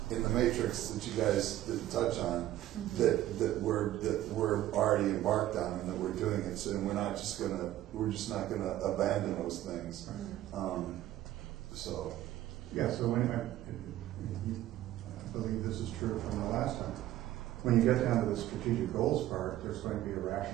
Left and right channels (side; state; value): left; quieter; 13.9 dB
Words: in the matrix that you guys didn't touch on that we're already embarked on and that we're doing it. So we're just not gonna abandon those things. So when I believe this is true from the last time. When you get down to the strategic goals part, there's going to be a